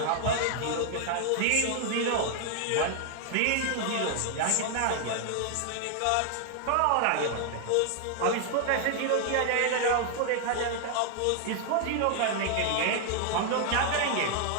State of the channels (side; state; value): both; different; correlation 0.00